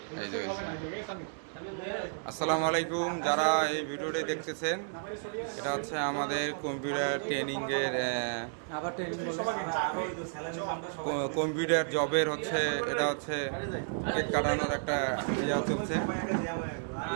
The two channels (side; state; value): left; silent; 56 dB below the other